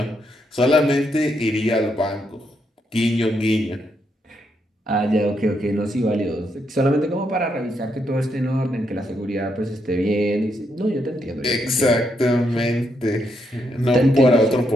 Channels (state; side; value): normal; both; correlation 0.78